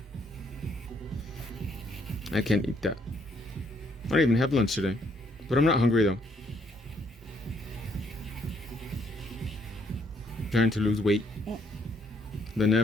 I can't eat that. I don't even have lunch today. But I'm not hungry though. Trying to lose weight. The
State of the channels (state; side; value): normal; both; correlation 0.70